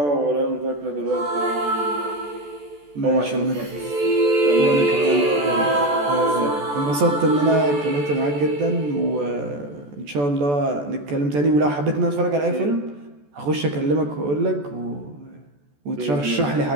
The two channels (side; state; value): left; late; 14 ms